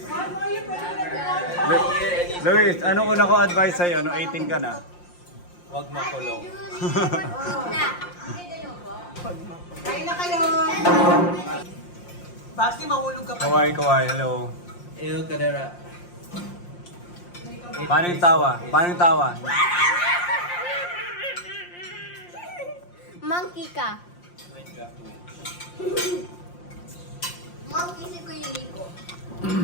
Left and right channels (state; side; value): late; right; 5.7 ms